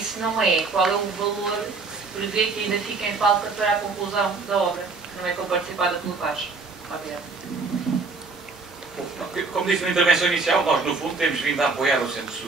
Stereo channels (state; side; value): quieter; left; 4.1 dB